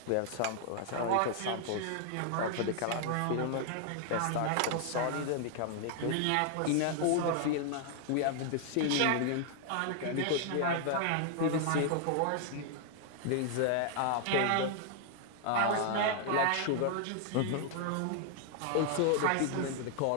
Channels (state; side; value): different; both; correlation 0.00